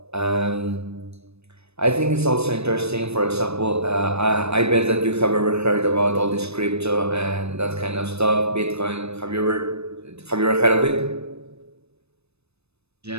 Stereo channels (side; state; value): left; late; 0.79 ms